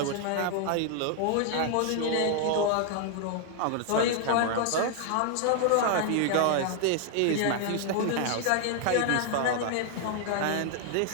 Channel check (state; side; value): different; both; correlation 0.00